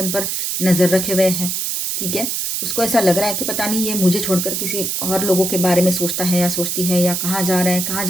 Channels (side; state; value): right; noise; hiss, 1 dB below the sound